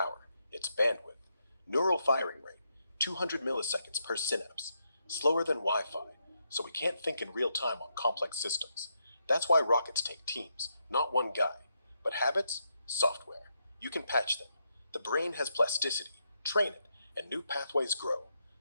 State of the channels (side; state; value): both; inverted; correlation -0.81